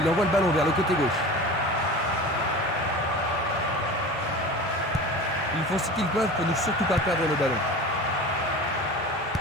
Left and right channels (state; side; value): normal; both; correlation 0.35